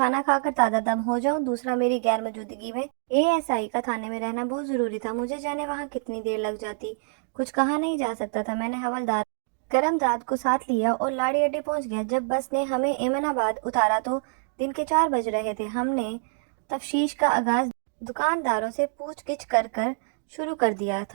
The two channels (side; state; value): left; silent; digital silence